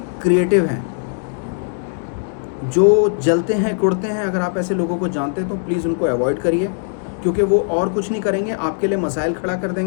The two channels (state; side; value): silent; right; digital silence